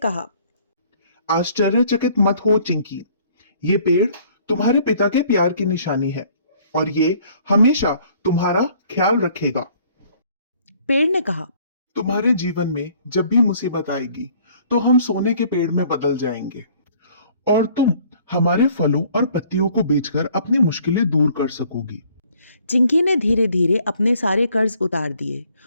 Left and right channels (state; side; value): inverted; both; correlation -0.59